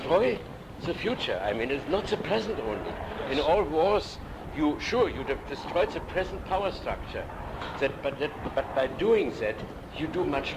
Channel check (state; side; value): identical; both; correlation 1.00